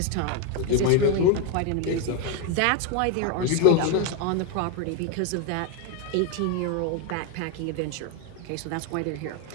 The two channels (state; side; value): different; both; correlation 0.01